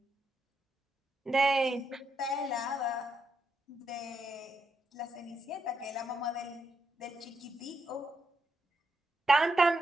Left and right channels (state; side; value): normal; both; correlation 0.82